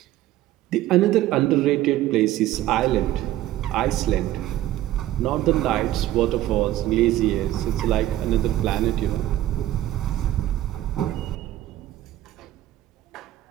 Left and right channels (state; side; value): quieter; left; 14.1 dB